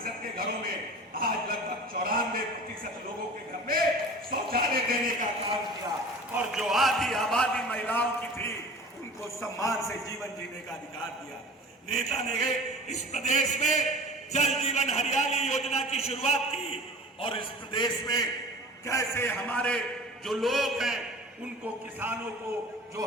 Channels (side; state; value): both; normal; correlation 0.40